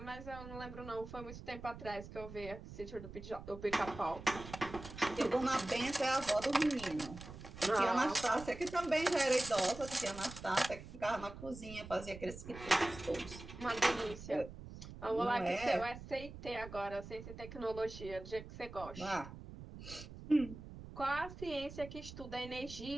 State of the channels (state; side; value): noise; right; rumble, 13 dB below the sound